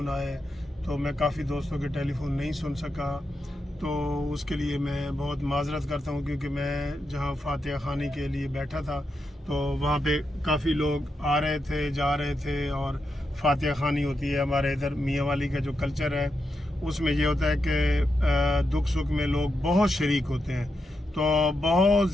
आए। तो मैं काफ़ी दोस्तों के टेलीफोन नहीं सुन सका, तो उसके लिए मैं बहुत माजरत करता हूँ, क्योंकि मैं जहाँ फातिहा खानी के लिए बैठा था तो वहाँ पे काफ़ी लोग आ रहे थे, जा रहे थे। और फातिहा खानी होती है हमारे इधर मियाँ वाली का जो कल्चर है, उसमें ये होता है कि दुख सुख में लोग बहुत शरीक होते हैं। तो बहुत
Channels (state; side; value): normal; both; correlation 0.85